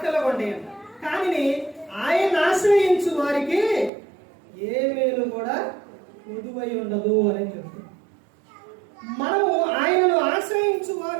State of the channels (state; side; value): drops out; left; at 3.9 s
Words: కొండేయండి. కానీ ఆయన ఆశ్రయించు వారికి ఏ మేలు కూడా కొదువై ఉండదు అని చెప్తుంది. మనము ఆయనను ఆశ్రయించు